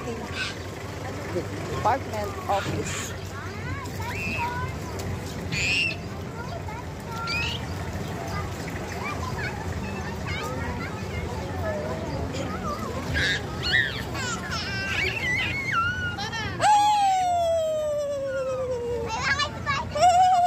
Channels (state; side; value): identical; both; correlation 1.00